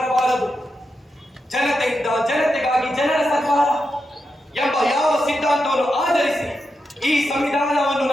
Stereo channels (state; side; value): normal; both; correlation 0.87